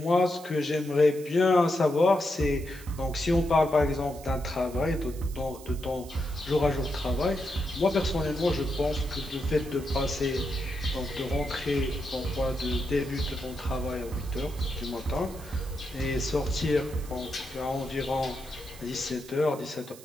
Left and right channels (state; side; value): noise; right; hiss, 19 dB below the sound